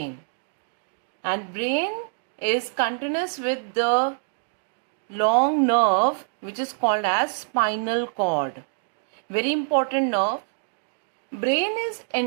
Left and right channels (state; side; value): silent; left; digital silence